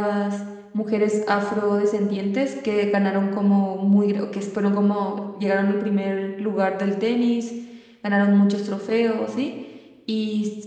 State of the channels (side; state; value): both; identical; correlation 1.00